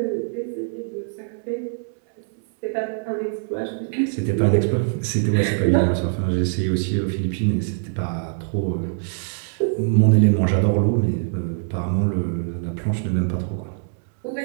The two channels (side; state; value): left; silent; 63 dB below the other